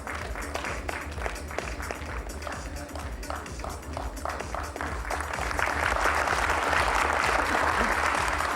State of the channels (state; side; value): identical; both; correlation 1.00